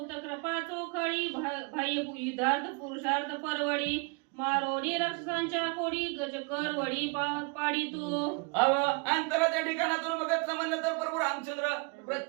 कृपा चोखळी भय युद्धार्थ पुरुषार्थ परवडी मारोडी राक्षसांच्या कोडी गजकर वडी पाडी तू. अंतराच्या ठिकाणातून बघितलं म्हणलं तर प्रभू रामचंद्र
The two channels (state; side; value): quieter; left; 31.2 dB